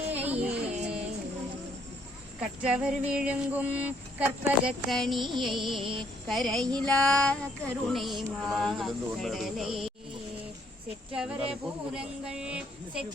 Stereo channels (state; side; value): normal; both; correlation 0.68